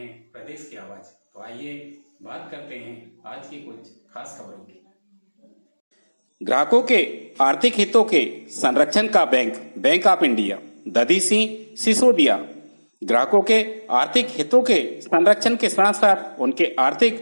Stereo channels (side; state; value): both; inverted; correlation -1.00